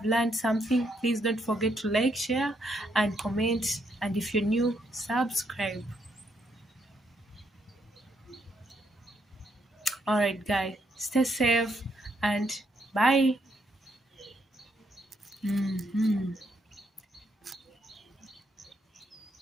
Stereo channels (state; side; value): normal; both; correlation 0.75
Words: learned something, please don't forget to like, share and comment, and if you're new, subscribe. All right, guys, stay safe and bye.